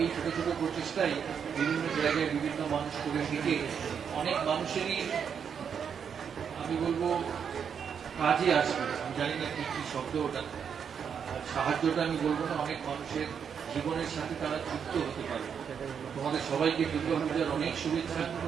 এই ছোট ছোট প্রচেষ্টাই বিভিন্ন জায়গায় বিভিন্ন মানুষ করে থেকে অনেক মানুষেরই আমি বলবো কাজে আসবে। আমি জানি না কি কি শব্দ ওটা, সাহায্যটা আমি বলবো না, অনেক মানুষের জীবনের সাথে তারা যুক্ত হতে পারে। তোমাদের সবাইকে দুর্গাপূজার অনেক শুভেচ্ছা,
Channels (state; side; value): quieter; left; 7.3 dB